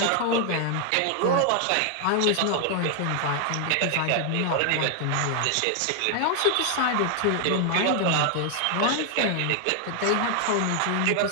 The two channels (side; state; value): both; different; correlation 0.00